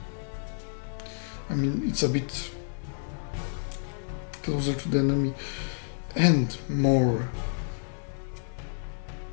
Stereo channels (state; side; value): silent; right; digital silence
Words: I mean, it's a bit closer to the enemy and more